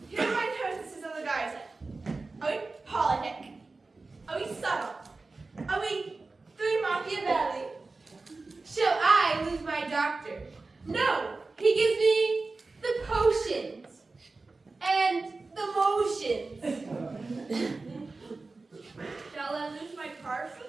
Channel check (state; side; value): quieter; left; 3.6 dB